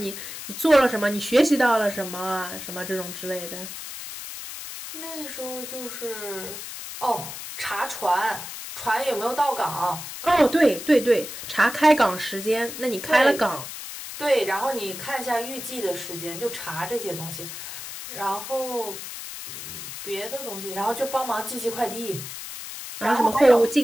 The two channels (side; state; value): left; noise; hiss, 9 dB below the sound